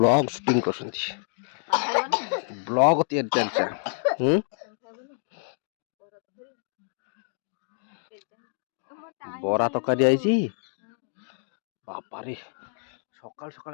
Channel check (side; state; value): right; silent; 60 dB below the other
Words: ସୁଟିଂ କରୁଛନ୍ତି। ବ୍ଲଗ ତିଆରି ଚାଲିଛି। ବରା ତରକାରୀ ଆଇଛି ବାପାରେ। ସକାଳୁ ସକାଳୁ